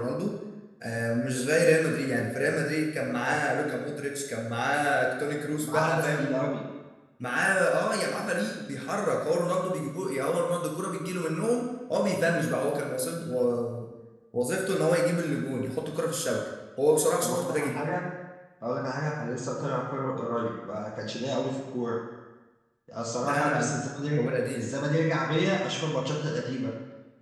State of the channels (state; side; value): identical; both; correlation 1.00